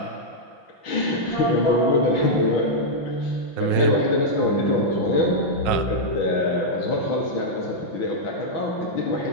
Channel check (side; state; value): right; late; 5.5 ms